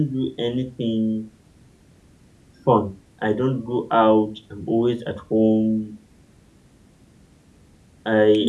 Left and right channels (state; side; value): identical; both; correlation 1.00